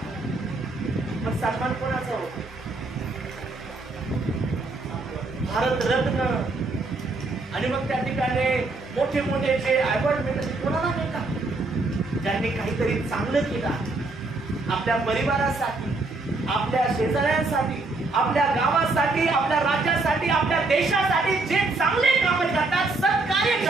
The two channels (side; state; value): left; quieter; 3.3 dB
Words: मग सन्मान कोणाचा होतो? भारतरत्न आणि मग त्या ठिकाणी मोठे मोठे जे अवॉर्ड मिळतात कोणाला मिळतात? ज्यांनी काहीतरी चांगलं केलं आपल्या परिवारासाठी, आपल्या शेजाऱ्यांसाठी, आपल्या गावासाठी, आपल्या राज्यासाठी, आपल्या देशासाठी जे चांगले काम करतात, सत्कार्य